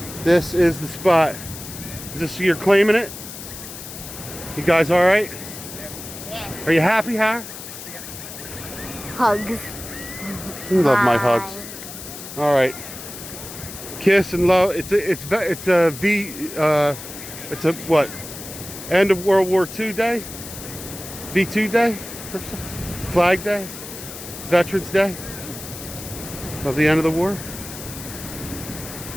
This is the spot. Is this you're claiming it? You guys all right? Yeah. Are you happy, Har? Hugs. You love my Bye. hugs. All right. Kiss and love. It's a what? End of World War II Day? V2 Day? Flag Day? Veterans Day? Of the end of the war?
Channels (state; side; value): noise; left; hiss, 12 dB below the sound